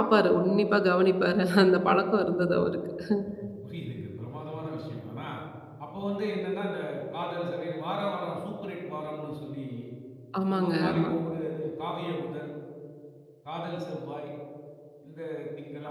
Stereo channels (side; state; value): both; identical; correlation 1.00